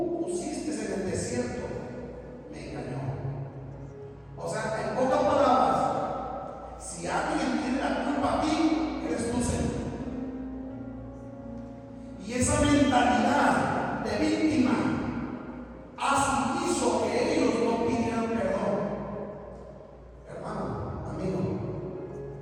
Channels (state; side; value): identical; both; correlation 1.00